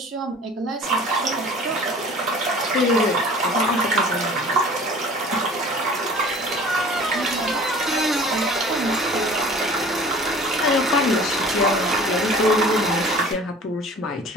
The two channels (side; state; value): both; normal; correlation 0.45